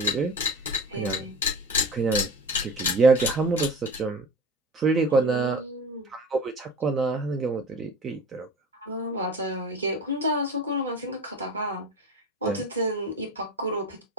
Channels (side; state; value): both; normal; correlation 0.34